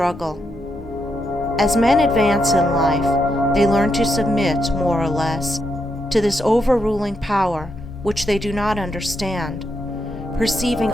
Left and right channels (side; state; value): both; normal; correlation 0.81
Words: As men advance in life, they learn to submit, more or less, to this overruling power which they do not understand, perceiving